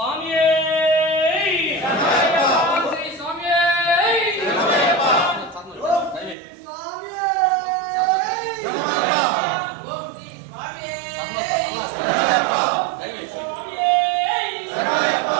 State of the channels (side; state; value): left; drops out; at 6.4 s